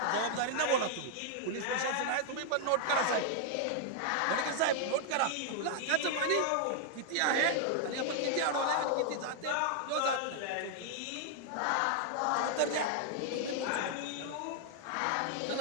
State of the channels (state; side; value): different; both; correlation 0.00